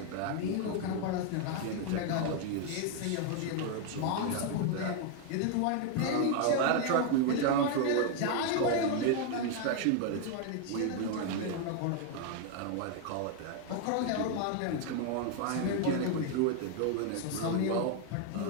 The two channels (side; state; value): both; different; correlation 0.00